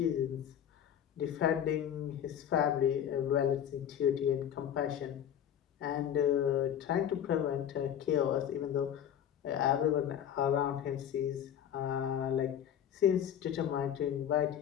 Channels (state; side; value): quieter; right; 9.6 dB